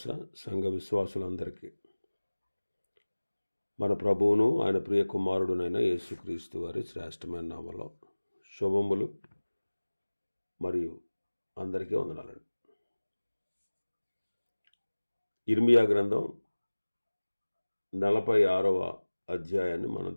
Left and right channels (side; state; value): both; inverted; correlation -1.00